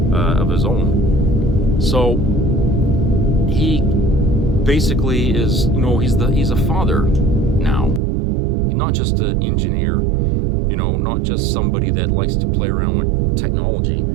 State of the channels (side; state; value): left; drops out; at 8.0 s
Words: of his own. So he basically is, you know, he's a father now. He's not just an engineer, you know, not just somebody that likes to play around with technology.